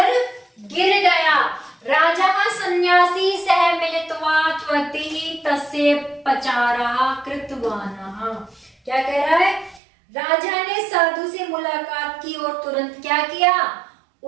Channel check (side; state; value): left; drops out; at 9.8 s